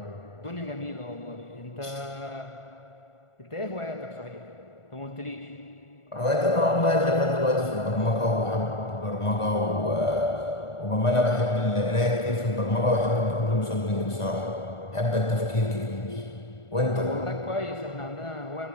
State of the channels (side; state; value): right; late; 1.5 ms